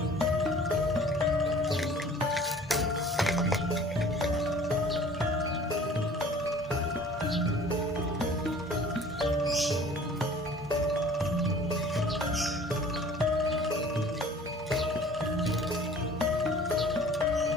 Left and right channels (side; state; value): both; normal; correlation 0.48